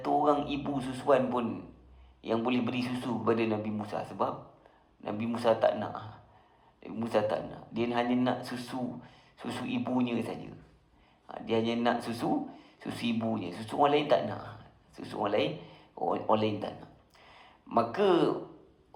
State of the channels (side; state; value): both; identical; correlation 1.00